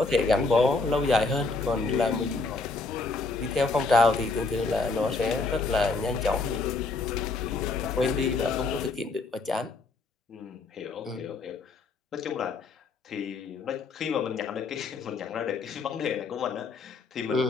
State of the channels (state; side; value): quieter; right; 3.9 dB